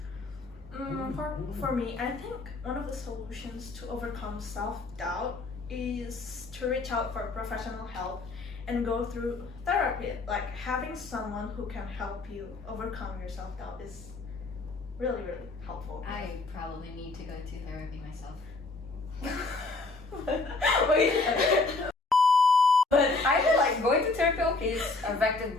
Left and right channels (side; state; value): right; quieter; 3.5 dB